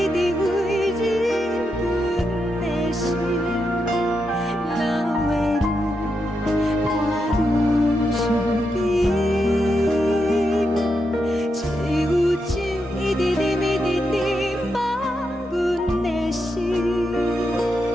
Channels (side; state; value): both; normal; correlation 0.84